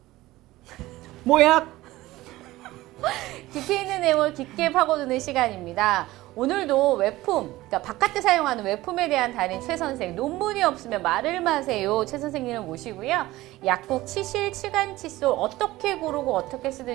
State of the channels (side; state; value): left; quieter; 17.6 dB